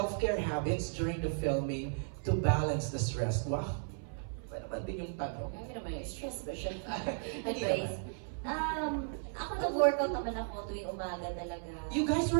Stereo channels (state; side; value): silent; left; 54 dB below the other